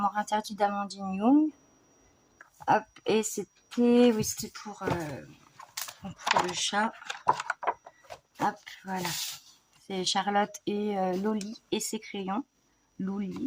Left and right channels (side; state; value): both; identical; correlation 1.00